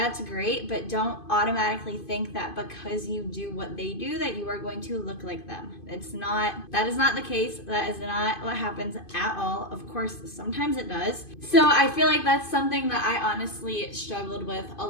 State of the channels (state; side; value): late; right; 2.5 ms